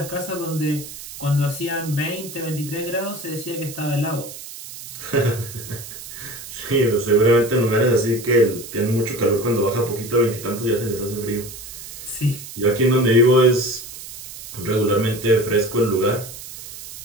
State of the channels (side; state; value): right; noise; hiss, 13 dB below the sound